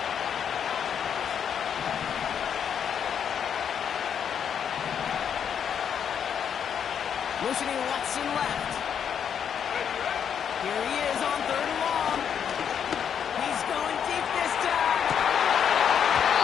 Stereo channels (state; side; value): quieter; right; 8.0 dB